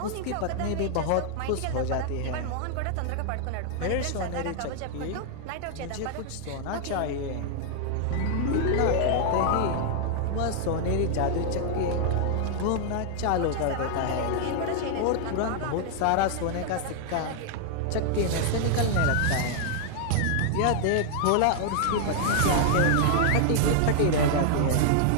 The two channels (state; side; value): different; both; correlation 0.00